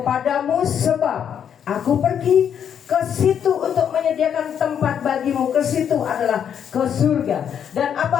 sebab aku pergi ke situ untuk menyediakan tempat bagimu. Ke situ adalah ke surga. Dan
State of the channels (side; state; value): right; quieter; 8.5 dB